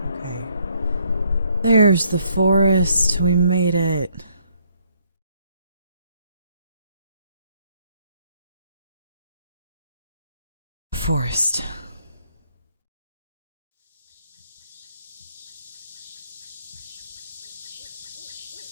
Okay. There's the forest. We made it. Forest.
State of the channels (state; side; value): inverted; both; correlation -0.69